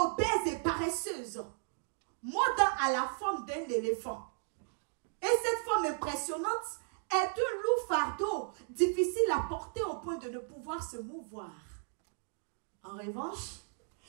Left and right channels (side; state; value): left; silent; digital silence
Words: et paresseuse. Maud à la forme d'un éléphant. Et cette forme impressionnante est un lourd fardeau, difficile à porter au point de ne pouvoir se mouvoir. En revanche,